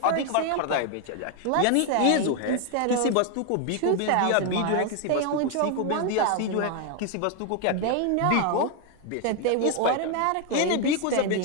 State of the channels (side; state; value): both; different; correlation 0.01